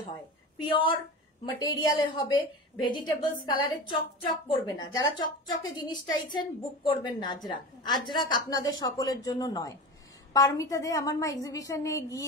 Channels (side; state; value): both; normal; correlation 0.29